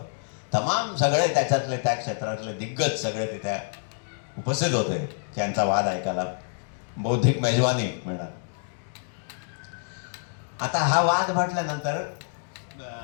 तमाम सगळे त्याच्यातले त्या क्षेत्रातले दिग्गज सगळे तिथे उपस्थित होते त्यांचा वाद ऐकायला, बौद्धिक मेजवानी म्हणा. आता हा वाद म्हटल्यानंतर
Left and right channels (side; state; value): right; silent; digital silence